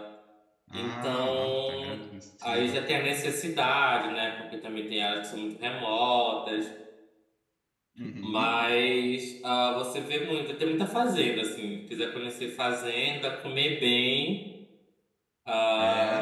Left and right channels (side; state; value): both; identical; correlation 1.00